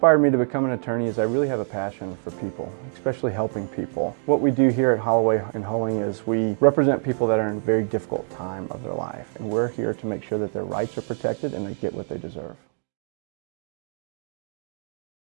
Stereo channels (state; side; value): silent; left; digital silence